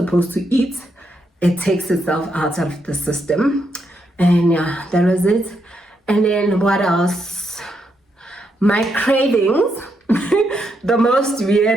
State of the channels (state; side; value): normal; both; correlation 0.80